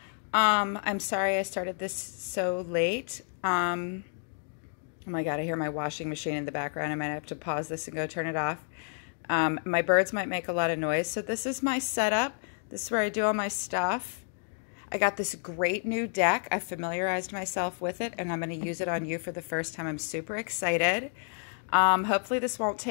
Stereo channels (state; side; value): silent; right; 58 dB below the other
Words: I'm sorry I started this so late. Oh my God, I hear my washing machine in the background. I might have to pause this and go turn it off. My birds might make a lot of noise. So this is my setup. This is where I do all my stuff. I got this great new deck. I familiarized myself with it, and I'm going to use it on you for the first time. I'm super excited. Hopefully this won't